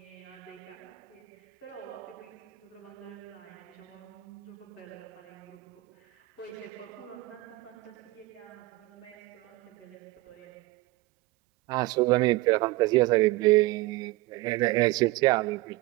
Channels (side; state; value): left; quieter; 20.0 dB